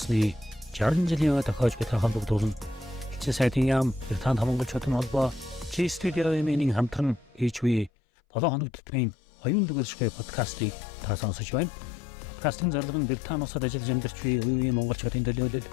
60 жилийн тохиож буй холбогдуулан элчин сайдын яам Британи монголчуудын холбоо студиогийн хамтран HV 7 хоног төтмийн Оюунлаг подкастыг та сонсож байна. Подкастын зорилго нь Британи улсад ажиллаж амьдарч буй үеийн монголчуудын төлөөлөл,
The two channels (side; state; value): right; drops out; at 7.9 s